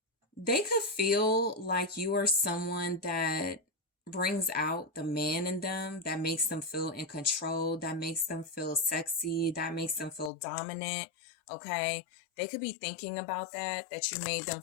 they could feel like you are someone that brings out the man in them, that makes them feel in control, that makes them feel sexy, that makes them feel dominant. Okay, they could be thinking about that you made them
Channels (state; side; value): drops out; right; at 10.3 s